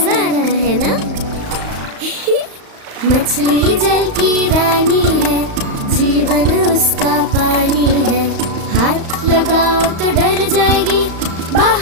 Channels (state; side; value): late; left; 35 ms